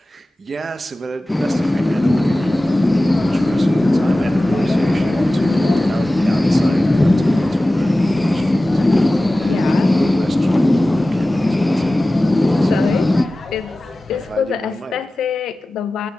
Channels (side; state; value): both; normal; correlation 0.96